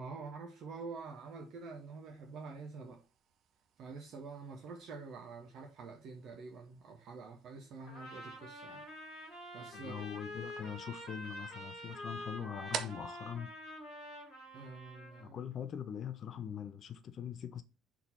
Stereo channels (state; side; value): normal; both; correlation 0.57